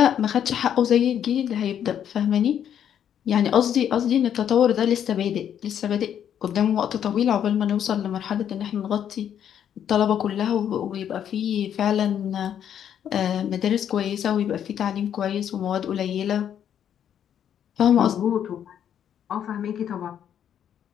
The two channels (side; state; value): right; quieter; 9.4 dB